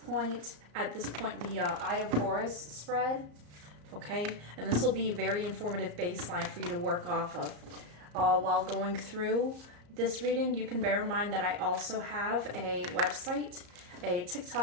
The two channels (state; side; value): late; left; 34 ms